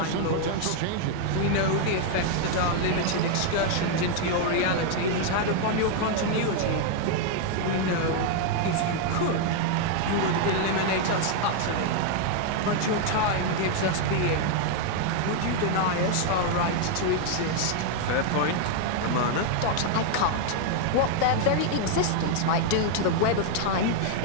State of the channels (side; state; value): both; different; correlation 0.00